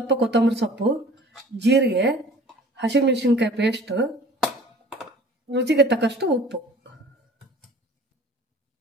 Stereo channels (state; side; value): normal; both; correlation 0.47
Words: ಕೊತ್ತಂಬರಿ ಸೊಪ್ಪು, ಜೀರಿಗೆ, ಹಸಿಮೆಣಸಿನ್ಕಾಯಿ ಪೇಸ್ಟು, ರುಚಿಗೆ ತಕ್ಕಷ್ಟು ಉಪ್ಪು.